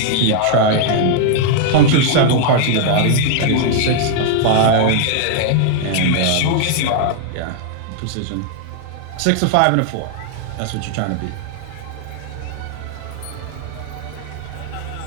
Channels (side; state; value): both; different; correlation 0.00